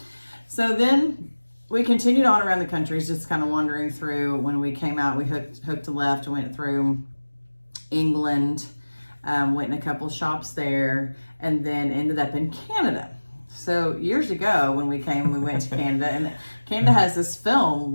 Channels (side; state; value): both; inverted; correlation -1.00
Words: So then... we continued on around the countries, just kind of wandering through. When we came out, we hooked a left, went through England, went in a couple shops there, and then ended up in Canada. So years ago, when we came, we went to Canada, and Canada has this film